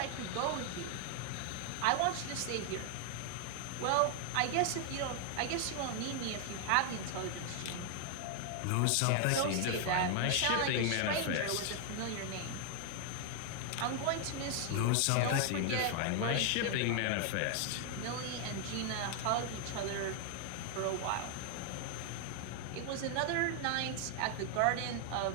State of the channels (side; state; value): both; different; correlation 0.00